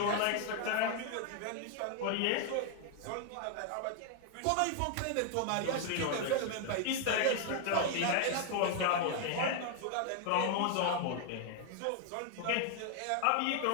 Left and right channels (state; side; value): different; both; correlation 0.00